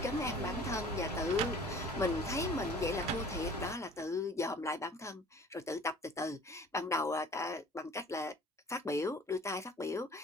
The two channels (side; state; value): both; normal; correlation 0.48